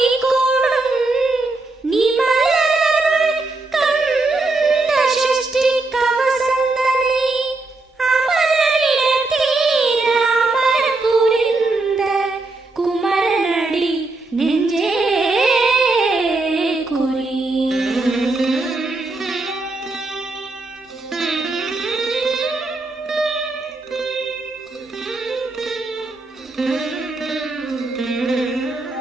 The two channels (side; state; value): left; quieter; 3.2 dB